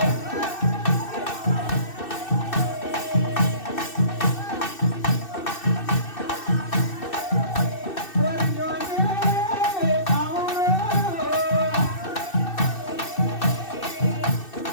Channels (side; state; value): right; late; 2.6 ms